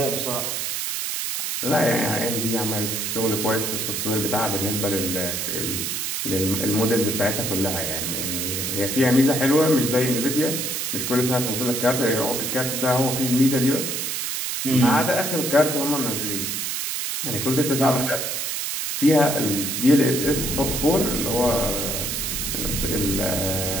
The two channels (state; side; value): noise; right; hiss, 2 dB below the sound